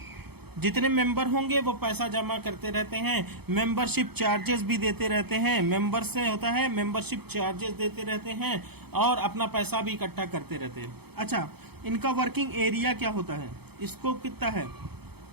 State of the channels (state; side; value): late; left; 0.97 ms